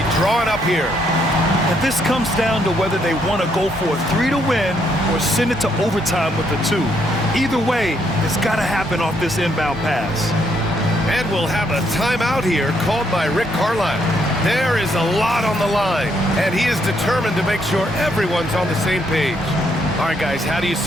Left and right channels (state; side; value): normal; both; correlation 0.73